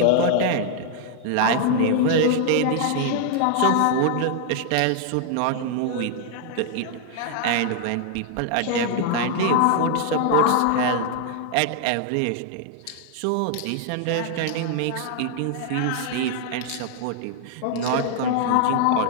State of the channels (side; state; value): both; different; correlation 0.00